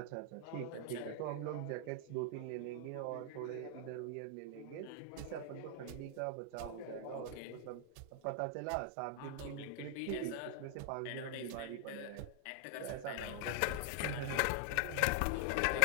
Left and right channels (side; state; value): both; different; correlation 0.00